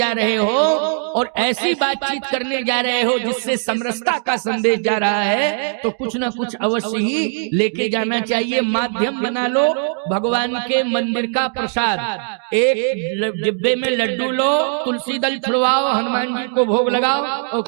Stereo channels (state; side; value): silent; left; 59 dB below the other